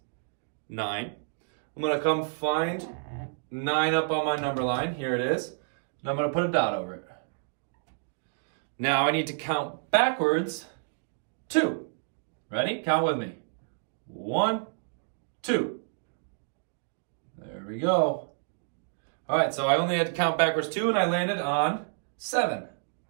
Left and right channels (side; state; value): left; silent; digital silence